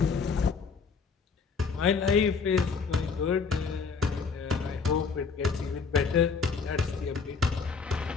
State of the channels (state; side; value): quieter; right; 5.2 dB